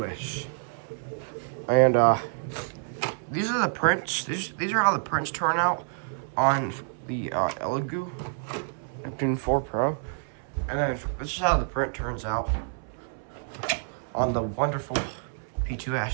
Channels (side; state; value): left; silent; 59 dB below the other